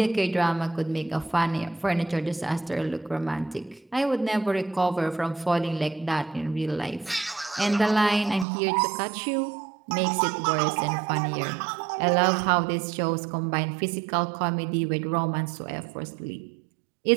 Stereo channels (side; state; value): left; drops out; at 8.5 s